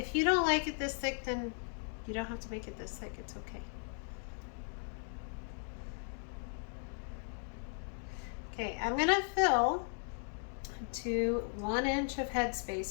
you don't like it this thick, then you don't have to make it this thick. It's okay. Okay, I'm going to fill to 1 inch of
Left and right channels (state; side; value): silent; right; 53 dB below the other